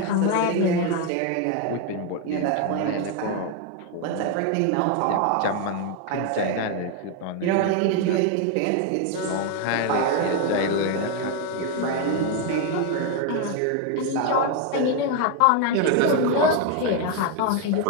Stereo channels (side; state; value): both; different; correlation 0.01